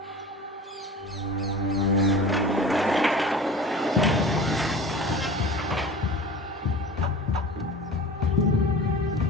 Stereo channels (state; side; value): normal; both; correlation 0.37